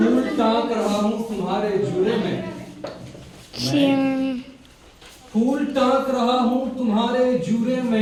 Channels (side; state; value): both; identical; correlation 1.00